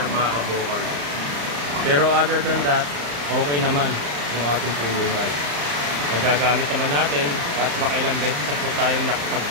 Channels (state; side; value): late; left; 35 ms